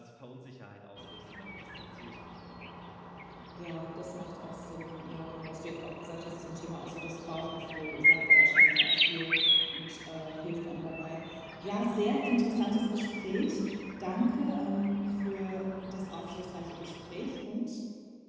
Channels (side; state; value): both; identical; correlation 1.00